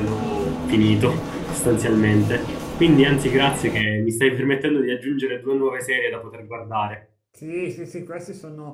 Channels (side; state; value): both; identical; correlation 1.00